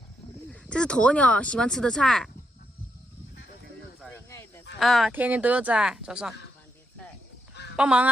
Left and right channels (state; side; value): normal; both; correlation 0.81